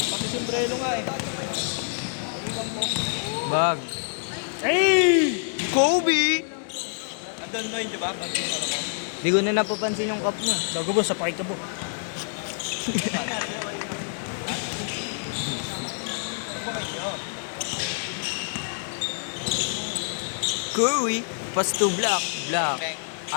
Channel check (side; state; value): right; silent; 61 dB below the other